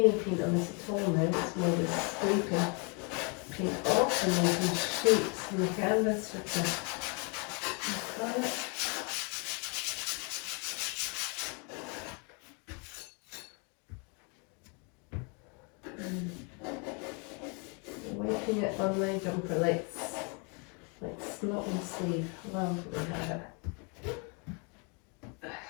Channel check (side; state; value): right; quieter; 34.9 dB